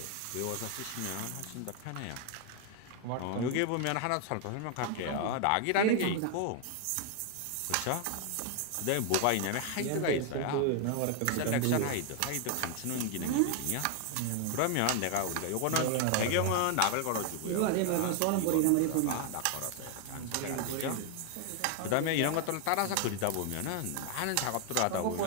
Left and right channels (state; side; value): different; both; correlation 0.00